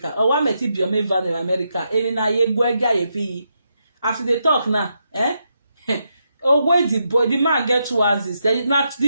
Or what met it be a van in America? After they talk now, oh, where the man get 2 houses. Not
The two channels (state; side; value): inverted; both; correlation -0.82